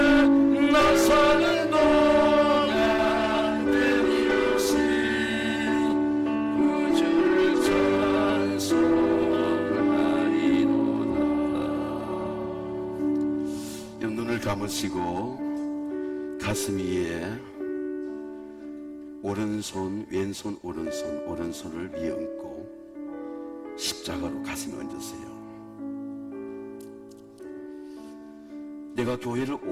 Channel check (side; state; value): both; identical; correlation 1.00